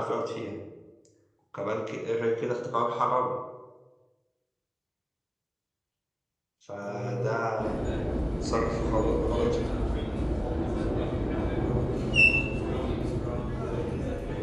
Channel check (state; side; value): identical; both; correlation 1.00